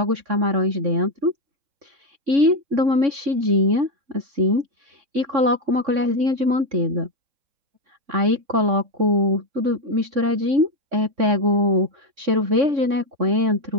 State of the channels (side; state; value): left; late; 3.6 ms